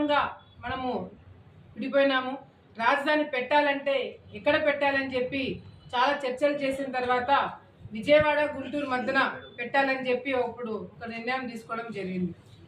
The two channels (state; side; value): identical; both; correlation 1.00